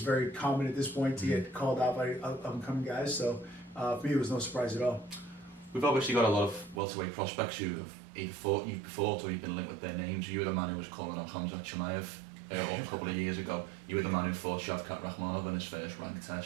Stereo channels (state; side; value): drops out; left; at 6.8 s